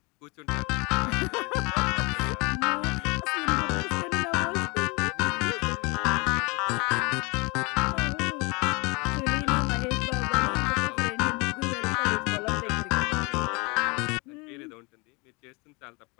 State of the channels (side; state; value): right; quieter; 28.6 dB